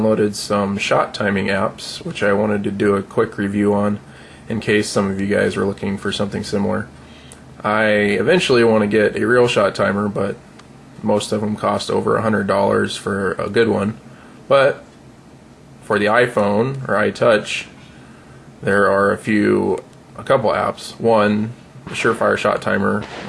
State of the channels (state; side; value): identical; both; correlation 1.00